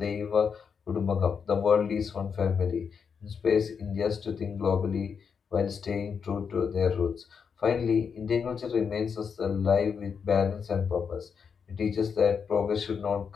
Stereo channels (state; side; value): quieter; right; 6.4 dB